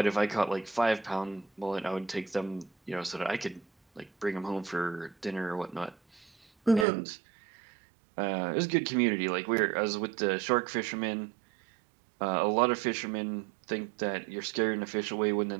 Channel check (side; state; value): left; drops out; at 6.9 s